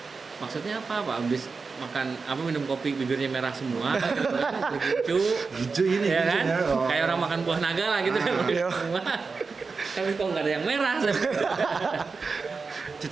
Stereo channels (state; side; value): quieter; left; 4.6 dB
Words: maksudnya apa? Habis makan apa minum kopi bibirnya merah semua, kopi gincu. Gincu ini, Ya kan? gincunya. Oh. Kayak orang makan buah naga lah gitu kan. Iya. Semua. Tapi kok nggak ada yang merah.